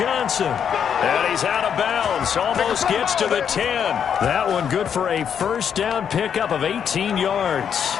And he's out of bounds. Almost gets to the 10. That one good for a first down pickup of 18 yards.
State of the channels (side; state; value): right; quieter; 8.0 dB